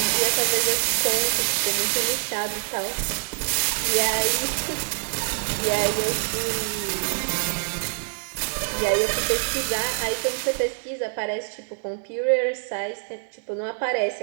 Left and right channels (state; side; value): silent; left; digital silence